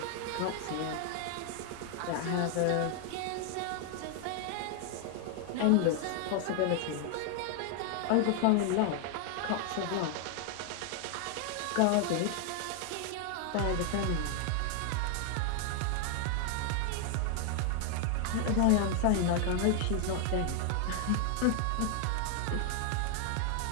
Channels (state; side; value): different; both; correlation 0.00